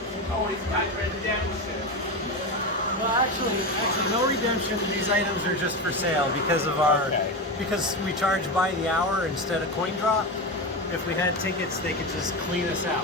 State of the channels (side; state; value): both; normal; correlation 0.18